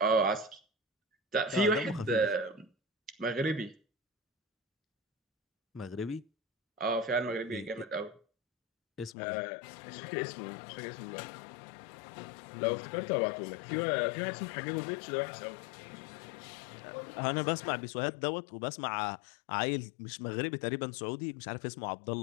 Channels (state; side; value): drops out; right; at 9.2 s